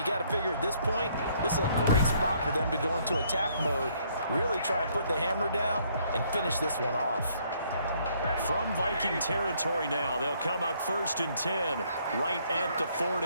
got to figure at this point, this is a great spot for them to go into attack mode, really try and put the hammer down and finish this one off. From Viking territory now, they'll come up 1st and 10, right at the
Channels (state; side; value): inverted; both; correlation -0.66